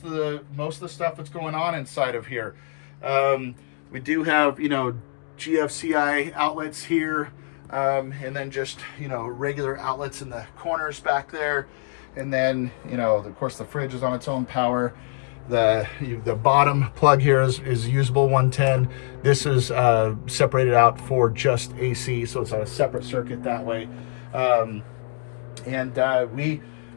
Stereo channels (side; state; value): right; silent; digital silence